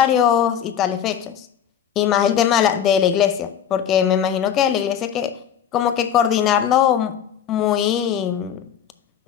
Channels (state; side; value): quieter; right; 9.1 dB